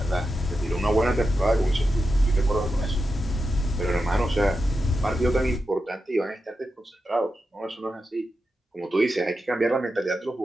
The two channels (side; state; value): both; normal; correlation 0.89